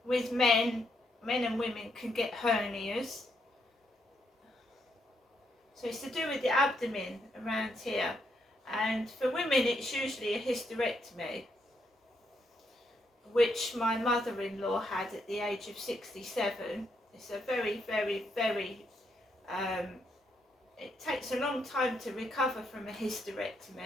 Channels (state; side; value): normal; both; correlation 0.77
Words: with men and women can get hernias. So it's to do with the abdomen around here. And for women it's usually a hysterectomy, which my mother-in-law had at the age of 67. It's a very, very, very, it takes a long time to recover from a